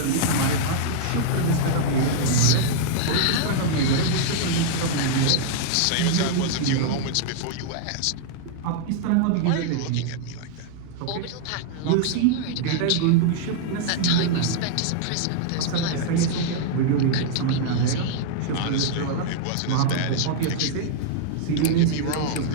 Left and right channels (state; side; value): different; both; correlation -0.01